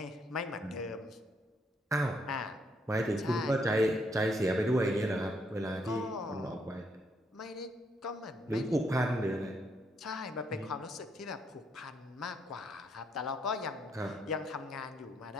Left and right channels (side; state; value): both; normal; correlation 0.74